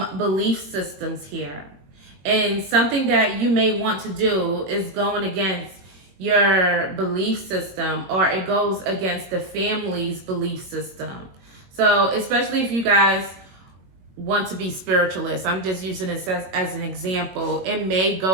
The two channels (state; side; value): late; left; 22 ms